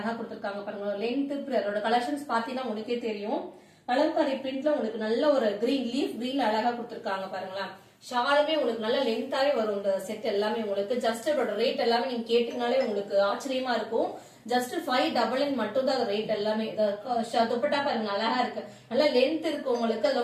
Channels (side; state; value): both; identical; correlation 1.00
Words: கொடுத்திருக்காங்க பாருங்க. லென்த் அதோட கலெக்ஷன்ஸ் பாத்தீங்கன்னா உங்களுக்கே தெரியும். கலம்காரி பிரிண்ட்ல உங்களுக்கு நல்ல ஒரு கிரீன் லீஃப் கிரீன் அழகா கொடுத்திருக்காங்க பாருங்களா. ஷாலுமே உங்களுக்கு நல்ல லென்த்தாவே வரும். இந்த செட் எல்லாமே உங்களுக்கு ஜஸ்ட் அதோட ரேட் எல்லாமே நீங்க கேட்டீங்கனாலே உங்களுக்கு ஆச்சரியமா இருக்கும். ஜஸ்ட் 599 மட்டும் தான் ரேட் எல்லாமே. துப்பட்டா பாருங்க அழகா இருக்கு, நல்ல லென்த் இருக்கு உங்களுக்கு.